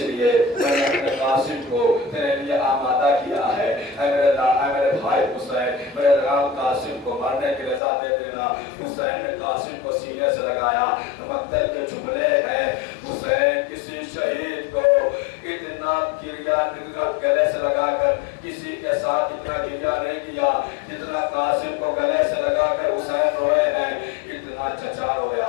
میں نے اپنے قاسم کو تیرے لیے آمادہ کیا ہے۔ اے میرے بھائی حسین، میرے رام قاسم کو مرنے کی رضا دے دینا۔ حسین نے قاسم کو سینے سے لگایا، مقتل کے جملے ہیں، حسین کسی شہید کو اتنا گلے سے لگا کر کسی کے ساتھ اتنا گریہ نہیں کیا جتنا قاسم کو گلے سے لگا کر حسین روئے ہیں۔ اتنا چچا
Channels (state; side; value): drops out; right; at 7.8 s